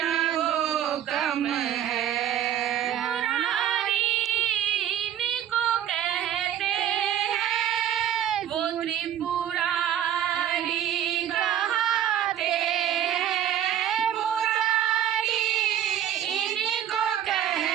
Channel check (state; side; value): quieter; left; 10.7 dB